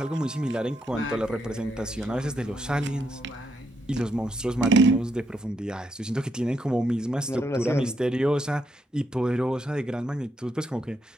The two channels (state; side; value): normal; both; correlation 0.79